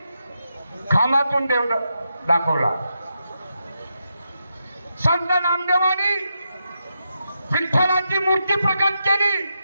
खामातून देव दाखवला. संत नामदेवानी विठ्ठलाची मूर्ती प्रकट केली.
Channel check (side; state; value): both; inverted; correlation -0.85